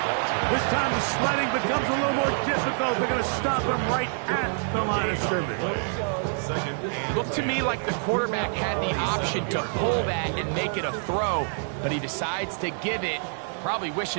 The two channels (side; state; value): left; silent; 61 dB below the other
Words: This time the sledding becomes a little more difficult. They're going to stop him right at the line of scrimmage. Looked to me like the quarterback had the option to pull that and make it a throw, but he decides to give it. Probably